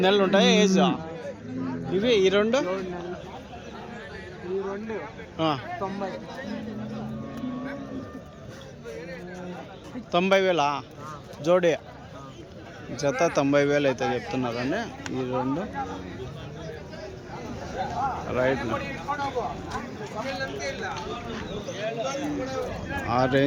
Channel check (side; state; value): both; identical; correlation 1.00